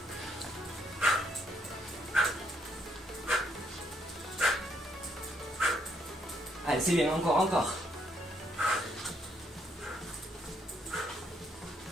Allez, c'est bien, encore.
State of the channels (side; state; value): both; normal; correlation 0.72